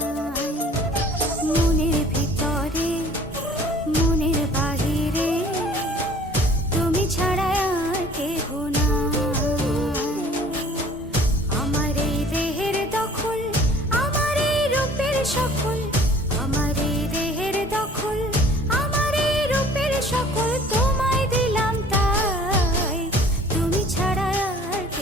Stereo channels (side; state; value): both; normal; correlation 0.52